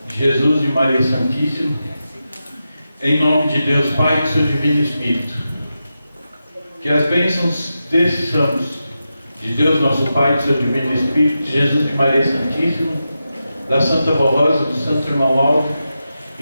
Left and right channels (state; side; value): inverted; both; correlation -0.90